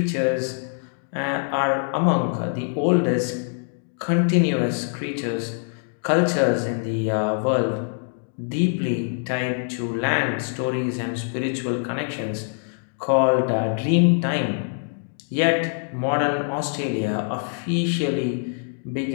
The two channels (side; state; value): right; silent; 62 dB below the other